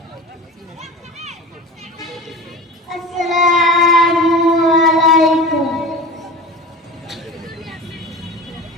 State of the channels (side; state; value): both; normal; correlation 0.33